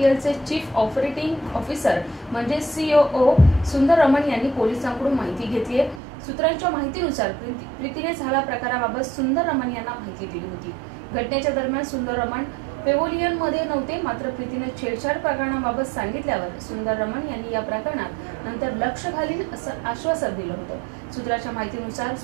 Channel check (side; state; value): left; drops out; at 6.0 s